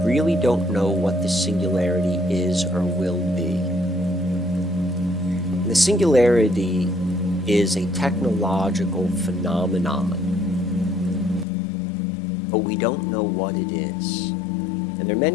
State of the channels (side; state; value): right; drops out; at 11.5 s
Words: really don't know what the singularity is or will be. The singularity is a technological phenomenon, but we don't know what it is. And there are